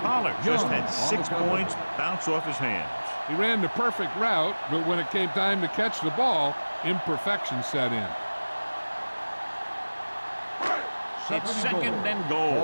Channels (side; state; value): both; inverted; correlation -1.00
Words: Pollard just had 6 points bounce off his hands. He ran the perfect route, but when it came time to catch the ball, imperfection set in. It's second and